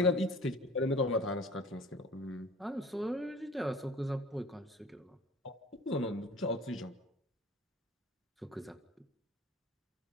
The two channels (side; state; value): both; normal; correlation 0.45